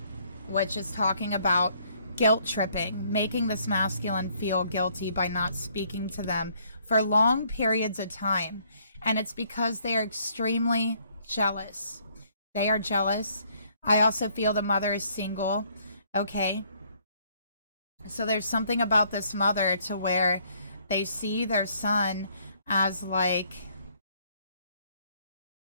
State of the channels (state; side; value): inverted; both; correlation -0.65